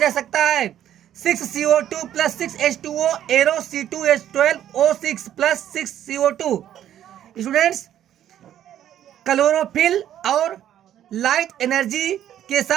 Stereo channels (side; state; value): left; quieter; 11.1 dB